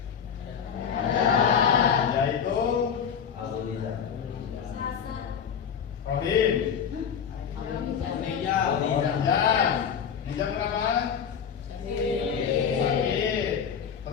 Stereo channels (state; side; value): quieter; right; 7.5 dB